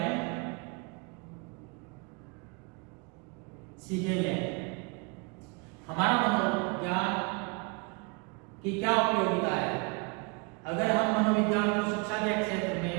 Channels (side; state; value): left; quieter; 32.2 dB